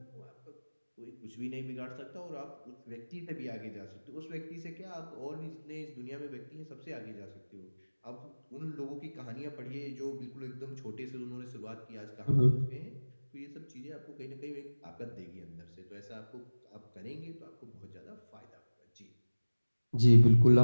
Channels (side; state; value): both; inverted; correlation -1.00